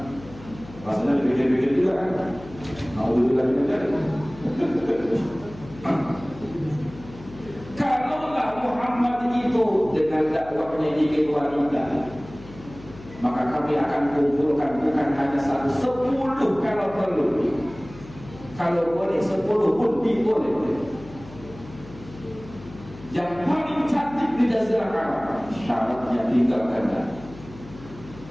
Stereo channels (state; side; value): noise; left; hum, 17 dB below the sound